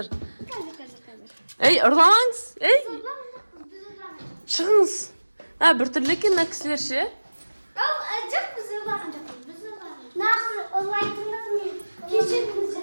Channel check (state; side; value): inverted; both; correlation -1.00